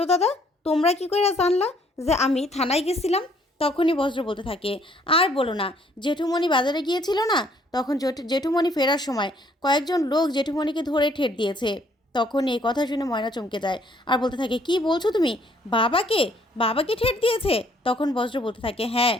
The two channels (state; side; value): normal; both; correlation 0.64